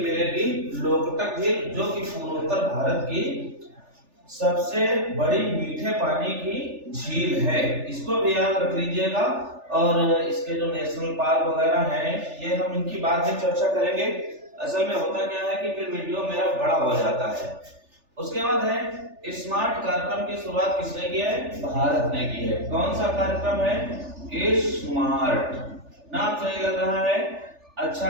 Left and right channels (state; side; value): late; left; 3.4 ms